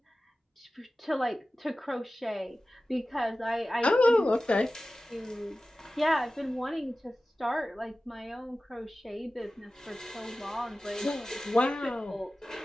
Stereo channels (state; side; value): normal; both; correlation 0.96